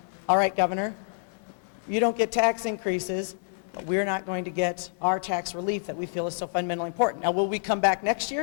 all right, Governor, you don't get tax increases, we're not going to get our tax relief that we feel is so fundamentally important. Now, will we come back next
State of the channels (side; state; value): right; silent; digital silence